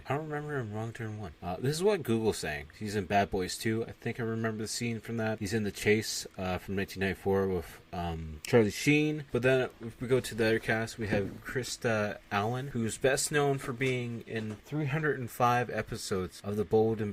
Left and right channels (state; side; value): identical; both; correlation 1.00